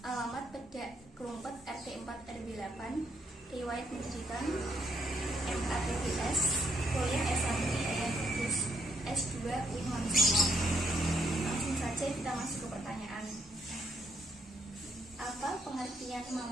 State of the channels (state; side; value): normal; both; correlation 0.74